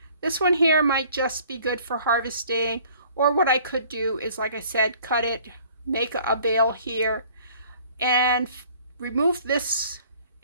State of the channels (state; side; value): inverted; both; correlation -0.54